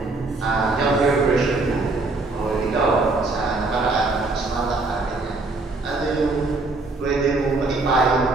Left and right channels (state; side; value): quieter; left; 3.4 dB